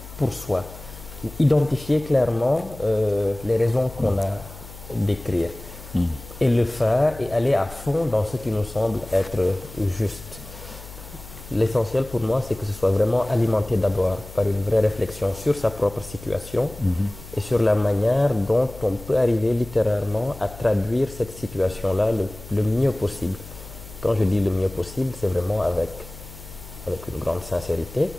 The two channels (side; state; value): left; noise; hum, 16 dB below the sound